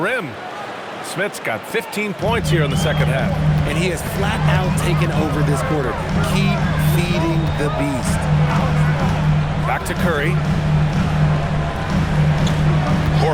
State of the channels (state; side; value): identical; both; correlation 1.00